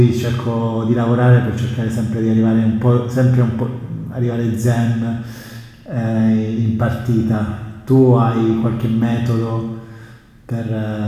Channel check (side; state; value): both; identical; correlation 1.00